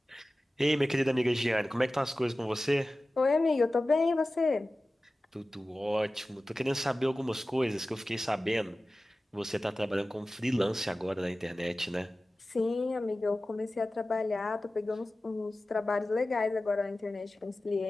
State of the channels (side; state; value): both; normal; correlation 0.96